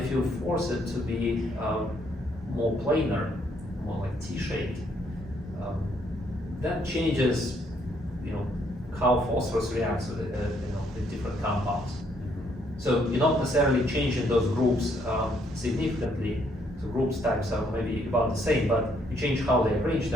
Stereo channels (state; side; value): normal; both; correlation 0.70